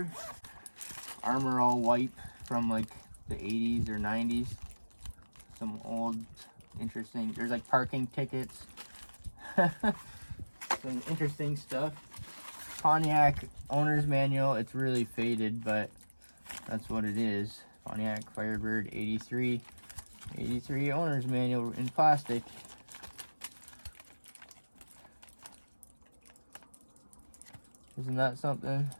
Armor All wipe from like the 80s or 90s. Some old interesting, there's like parking tickets. Some interesting stuff. Pontiac owner's manual. It's really faded, but that's what it is. Pontiac Firebird 83 owner's manual in plastic. Isn't that something?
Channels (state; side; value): inverted; both; correlation -1.00